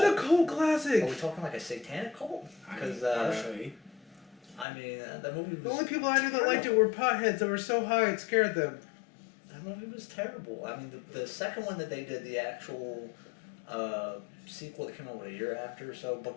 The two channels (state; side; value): drops out; right; at 4.7 s